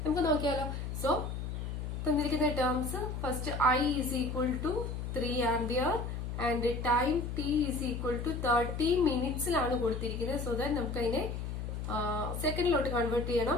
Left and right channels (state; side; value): noise; left; hum, 5 dB below the sound